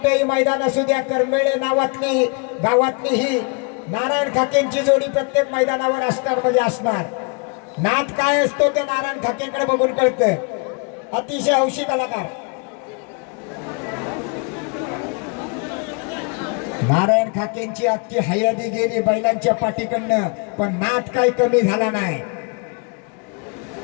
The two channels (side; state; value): right; quieter; 35.2 dB